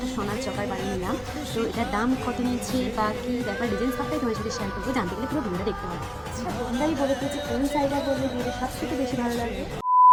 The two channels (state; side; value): identical; both; correlation 1.00